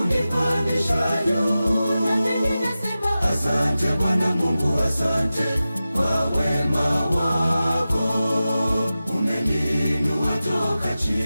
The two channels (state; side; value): inverted; both; correlation -0.94